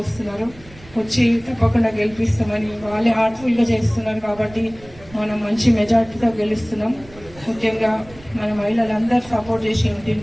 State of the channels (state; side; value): noise; right; rumble, 21 dB below the sound